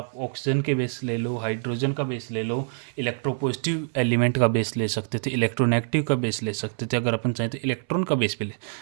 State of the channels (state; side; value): silent; left; 61 dB below the other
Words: ऑक्सीजन के बेस ले लो, हाइड्रोजन का बेस ले लो, इलेक्ट्रोपॉजिटिव एलिमेंट का बेस ले सकते थे, इलेक्ट्रोनेगेटिव का बेस ले सकते थे, अगर अपन चाहें तो इलेक्ट्रॉन का बेस पे ले।